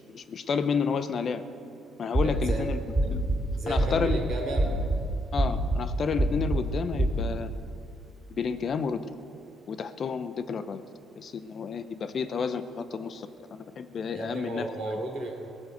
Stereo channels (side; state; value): both; normal; correlation 0.77